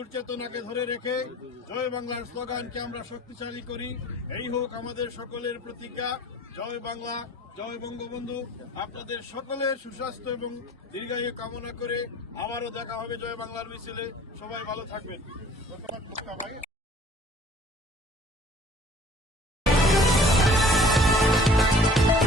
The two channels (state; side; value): normal; both; correlation 0.51